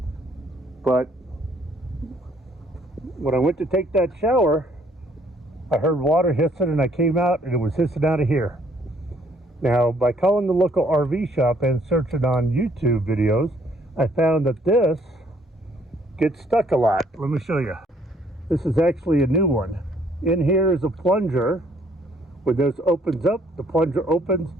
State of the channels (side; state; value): both; normal; correlation 0.64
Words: But when I went to take that shower, I heard water hissing, and I came out and it was hissing out of here. Now, by calling the local RV shop and searching on YouTube videos, I found that this gets stuck a lot. Let me show you. This is actually a new one. In here is a plunger. When this opens up, the plunger opens,